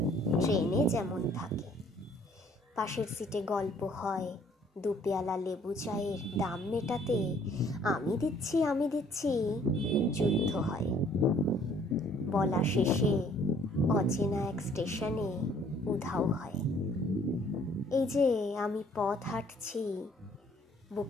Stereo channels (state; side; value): normal; both; correlation 0.59